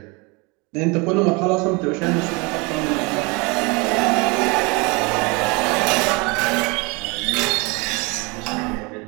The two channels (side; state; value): left; quieter; 28.0 dB